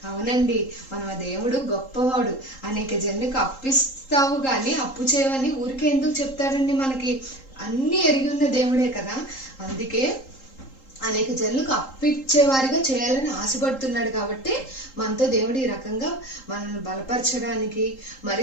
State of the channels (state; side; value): late; right; 3.8 ms